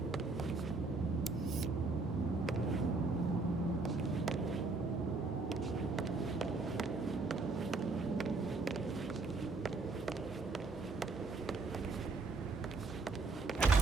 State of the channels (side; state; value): left; quieter; 3.7 dB